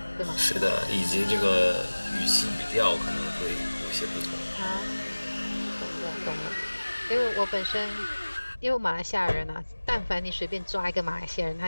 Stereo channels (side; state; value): both; inverted; correlation -1.00